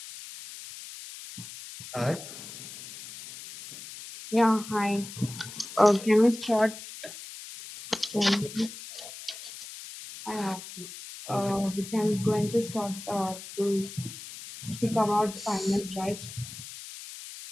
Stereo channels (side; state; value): left; noise; hiss, 13 dB below the sound